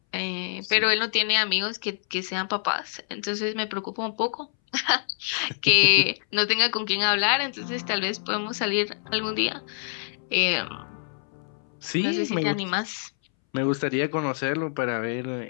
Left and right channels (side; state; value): right; silent; 61 dB below the other